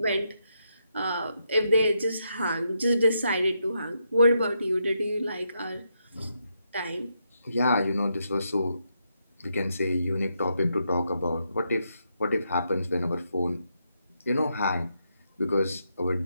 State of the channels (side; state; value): both; inverted; correlation -0.81